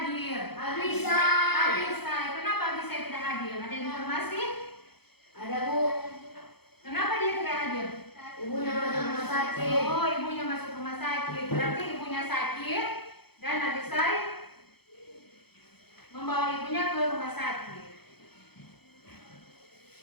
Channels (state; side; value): late; right; 0.97 ms